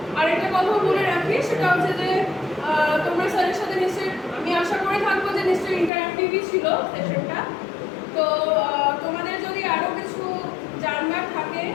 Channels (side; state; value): right; drops out; at 5.9 s